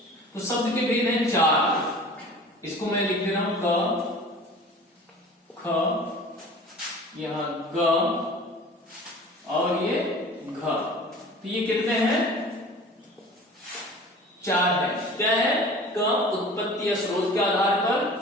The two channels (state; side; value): normal; both; correlation 0.42